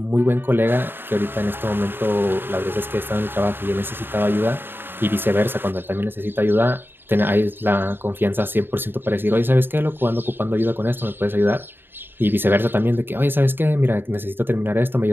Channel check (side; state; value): left; late; 0.10 ms